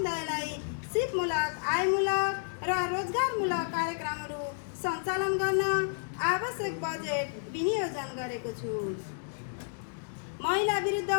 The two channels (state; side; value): silent; right; digital silence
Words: सिपमूलक, आयमूलक र रोजगारमूलक कार्यक्रमहरू सञ्चालन गर्न आवश्यक बजेट विनियोजन गरेको छु। महिला विरुद्ध